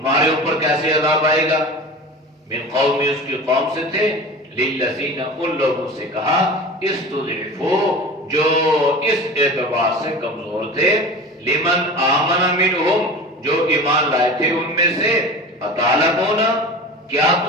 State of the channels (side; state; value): both; normal; correlation 0.34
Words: اوپر کیسے عذاب آئے گا؟ من قومی، اس کی قوم سے تھے، للذین، ان لوگوں سے کہا، استضعفوا، جو اس اعتبار سے کمزور تھے، لمن آمن منہم، جو ایمان لائے تھے ان میں سے، اتعلمون، کیا